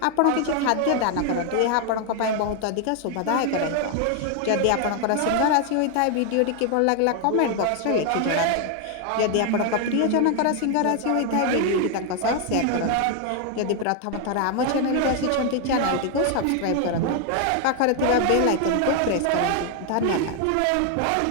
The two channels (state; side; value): different; both; correlation 0.00